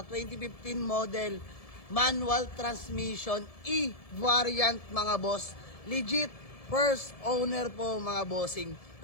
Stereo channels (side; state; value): right; late; 1.7 ms